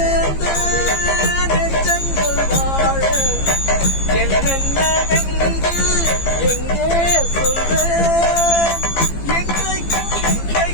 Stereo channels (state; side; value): late; right; 15 ms